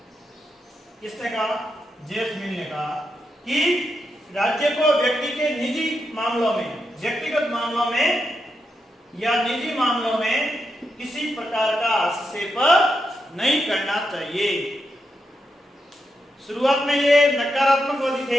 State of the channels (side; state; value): both; normal; correlation 0.84